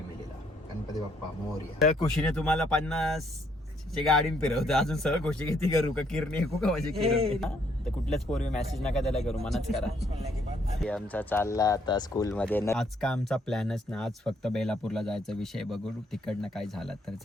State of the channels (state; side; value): normal; both; correlation 0.70